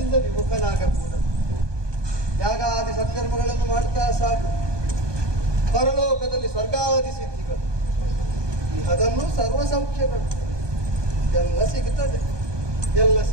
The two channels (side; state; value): left; late; 1.2 ms